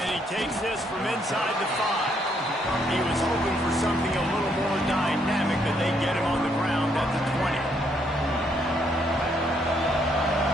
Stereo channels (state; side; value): normal; both; correlation 0.72